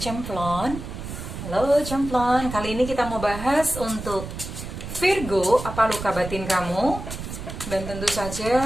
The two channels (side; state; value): right; noise; rumble, 8 dB below the sound